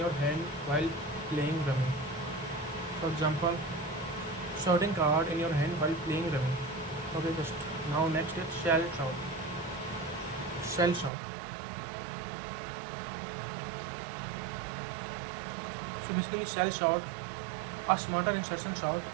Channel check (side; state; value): left; drops out; at 11.1 s